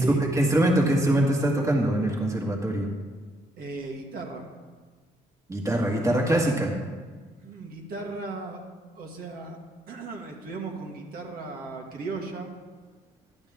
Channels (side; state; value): both; normal; correlation 0.74